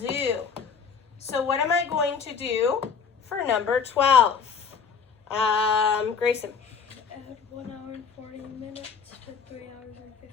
So what am I going to do for number 12? Grayson. Add 1 hour and 40 minutes to 3 hours and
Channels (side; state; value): right; quieter; 6.1 dB